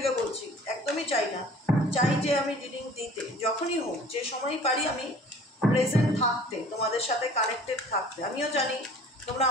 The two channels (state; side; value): normal; both; correlation 0.48